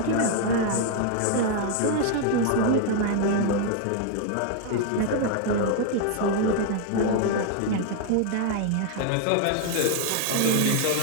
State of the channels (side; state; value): both; different; correlation 0.00